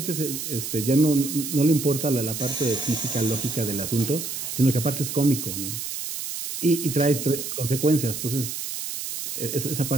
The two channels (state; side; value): noise; right; hiss, 6 dB below the sound